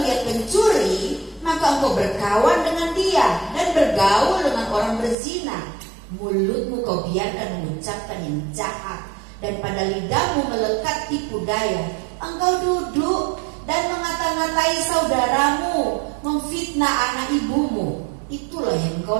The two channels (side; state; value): left; drops out; at 5.2 s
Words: pencuri, maka engkau berkawan dengan dia dan bergaul dengan orang berzina. Mulutmu kau biarkan mengucapkan yang jahat, dan pada lidahmu melekat tipu daya. Engkau duduk dan mengata-ngatai saudaramu, memfitnah anak ibumu. Itulah yang